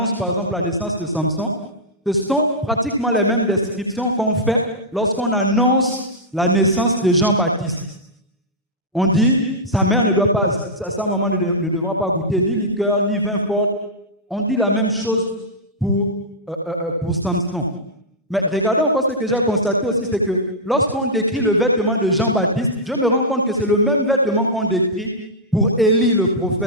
par exemple la naissance de Samson, ce sont pratiquement les mêmes descriptions qu'on fait lorsqu'on annonce la naissance de Jean-Baptiste. On dit, sa mère ne doit pas, sa maman ne devra pas goûter ni liqueur, ni vin fort. On dit la même chose pour Samson. Mais regardez encore ce que j'ai constaté aussi, c'est que lorsqu'on décrit le vêtement de Jean-Baptiste, je me rends compte que c'est le même vêtement qu'on décrit pour Élie le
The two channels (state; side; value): normal; both; correlation -0.10